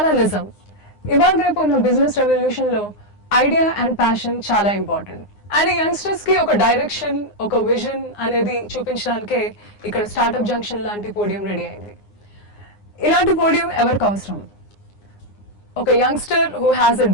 నిజం. ఇవాళ రేపు ఉన్న బిజినెస్ రెవల్యూషన్ లో ఐడియా అండ్ ప్యాషన్ చాలా ఇంపార్టెంట్. అండ్ యంగ్స్టర్స్ కి ఒక డైరెక్షన్, ఒక విజన్ అనేది చూపించడానికే ఇక్కడ స్టార్టప్ జంక్షన్ లాంటి పోడియం రెడీ అయింది. ఇలాంటి పోడియం ఎవరికి అవసరం? ఒక youngster who has a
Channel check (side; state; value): right; late; 9.7 ms